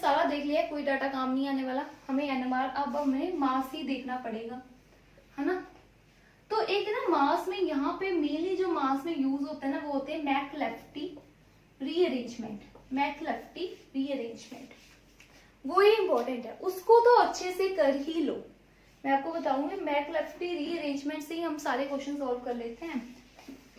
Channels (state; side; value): identical; both; correlation 1.00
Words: देख लिया, कोई डाटा काम नहीं आने वाला हमें एनएमआर, अब हमें मास ही देखना पड़ेगा, है ना। तो एक ना मास में यहाँ पे मेनली जो मास में यूज होता है ना वो होते हैं मैकलेफ्टी रीअरेंजमेंट, मैकलेफ्टी रीअरेंजमेंट, वो ही इंपॉर्टेंट है, उसको तो अच्छे से कर ही लो। मैं आपको बताऊंगी मैकलेफ्टी रीअरेंजमेंट से ही हम सारे क्वेश्चन सॉल्व कर लेते हैं